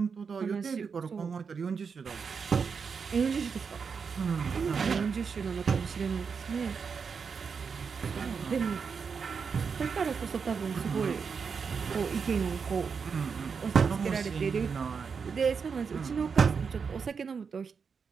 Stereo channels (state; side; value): quieter; left; 5.8 dB